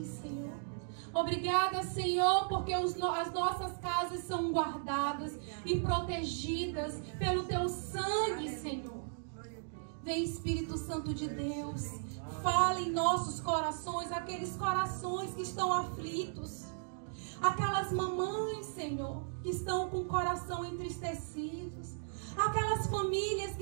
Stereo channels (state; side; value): silent; left; digital silence